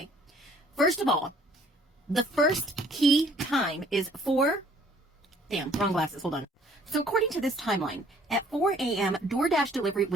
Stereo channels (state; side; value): normal; both; correlation 0.58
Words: First of all, the first key time is wrong glasses, hold on. So according to this timeline, at 4 a.m., DoorDash delivery